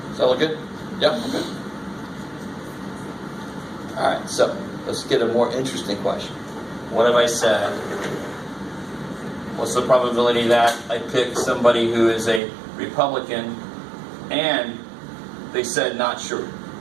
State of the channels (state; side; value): drops out; left; at 12.4 s